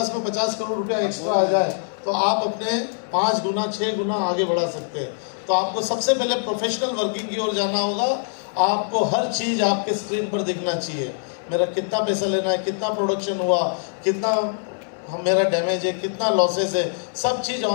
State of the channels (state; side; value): silent; right; 63 dB below the other